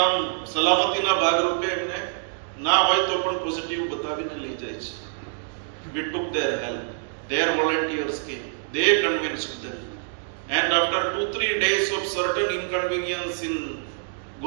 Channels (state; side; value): silent; left; digital silence